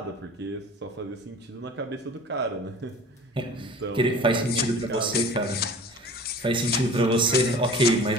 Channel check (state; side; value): normal; both; correlation 0.42